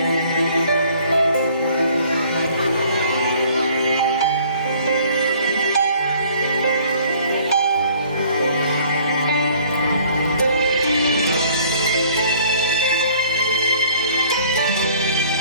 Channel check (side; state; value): both; inverted; correlation -0.55